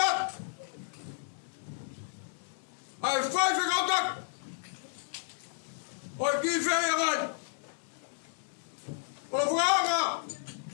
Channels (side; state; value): right; silent; 56 dB below the other